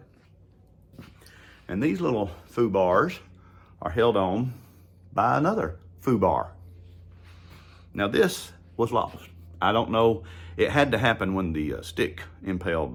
And these little foo bars are held on by another foo bar. Now this was lost. I don't know, it had to happen when the stick impaled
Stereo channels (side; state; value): both; identical; correlation 1.00